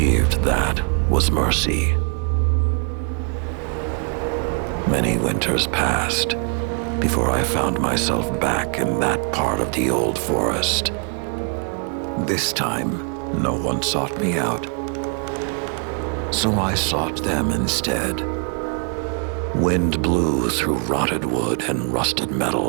that was mercy. Many winters passed before I found myself back in that part of the old forest. This time, no one sought me out. So I sought them instead. Wind blew through rotted wood and rusted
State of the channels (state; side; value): quieter; left; 37.8 dB